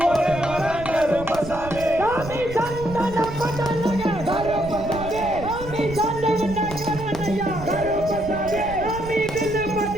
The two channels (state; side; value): noise; right; rumble, 11 dB below the sound